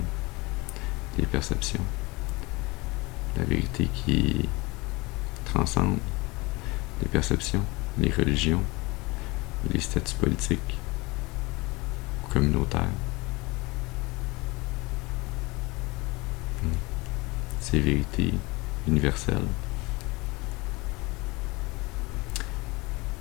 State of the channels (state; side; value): quieter; right; 24.0 dB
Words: les perceptions. La vérité qui transcende les perceptions, les religions, les statuts politiques ou communautaires. Ces vérités universelles,